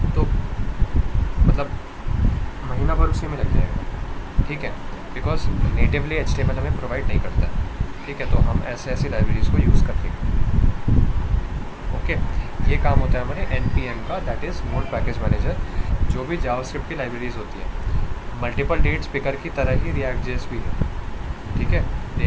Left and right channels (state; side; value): identical; both; correlation 1.00